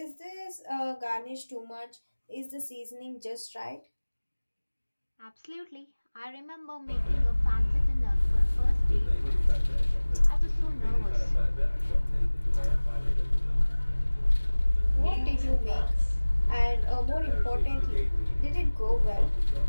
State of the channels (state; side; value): inverted; both; correlation -1.00